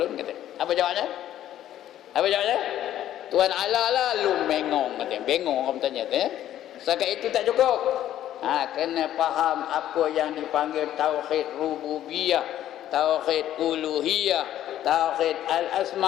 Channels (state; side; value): quieter; right; 12.1 dB